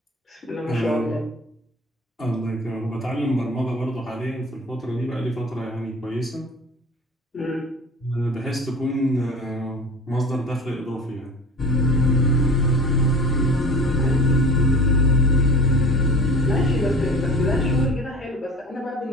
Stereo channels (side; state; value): both; normal; correlation 0.38